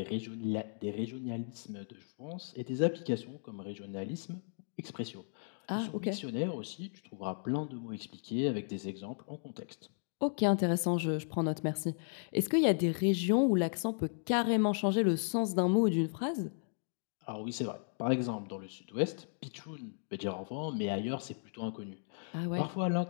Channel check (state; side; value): silent; right; digital silence